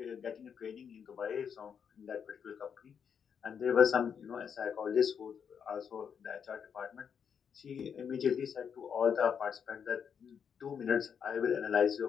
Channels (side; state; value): right; quieter; 7.3 dB